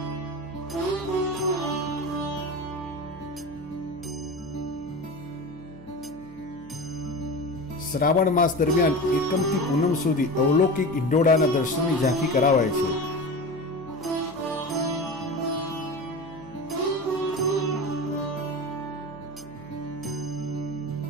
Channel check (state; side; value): noise; left; hum, 23 dB below the sound